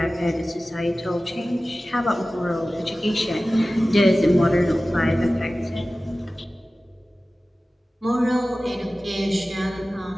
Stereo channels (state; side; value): normal; both; correlation 0.96